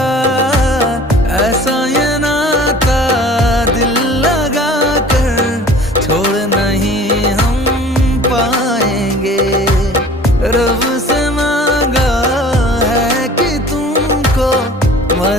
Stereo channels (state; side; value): normal; both; correlation 0.46